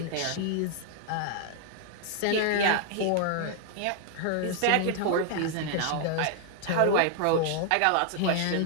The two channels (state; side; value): different; both; correlation 0.00